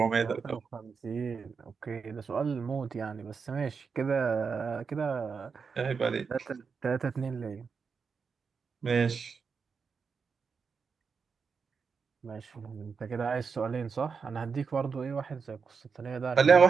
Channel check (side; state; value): left; quieter; 5.6 dB